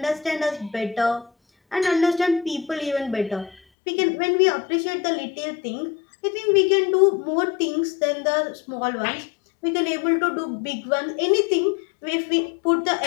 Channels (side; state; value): right; drops out; at 3.6 s